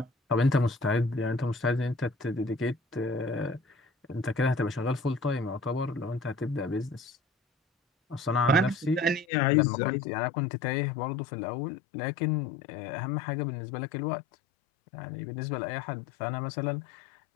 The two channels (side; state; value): right; drops out; at 9.2 s